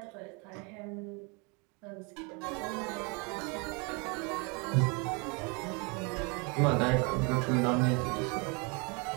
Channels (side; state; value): left; quieter; 31.8 dB